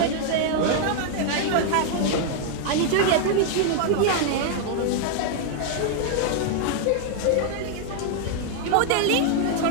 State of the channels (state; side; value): different; both; correlation 0.00